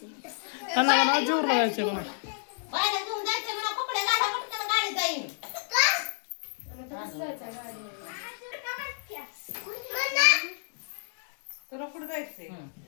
त्यांना म्हणा जीवर जायचं म्हणा. तुला कुठं जायचंय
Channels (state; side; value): silent; right; digital silence